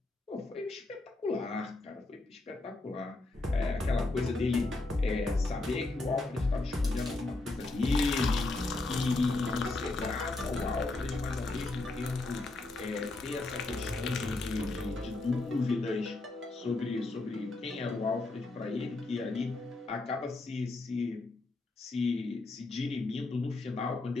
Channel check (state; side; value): quieter; right; 3.1 dB